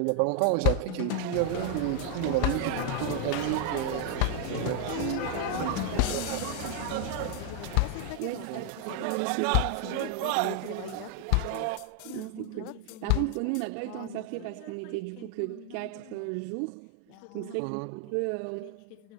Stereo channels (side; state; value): both; different; correlation 0.00